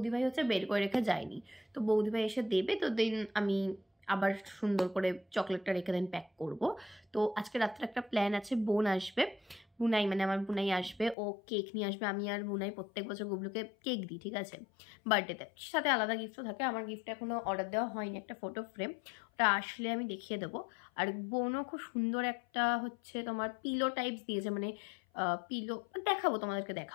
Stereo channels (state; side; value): drops out; right; at 11.2 s